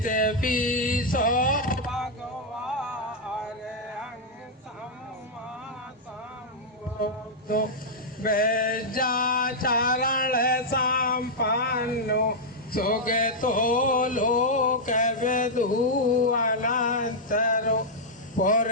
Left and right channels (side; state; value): both; normal; correlation -0.05